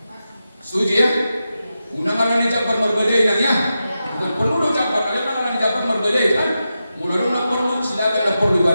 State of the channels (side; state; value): both; inverted; correlation -0.90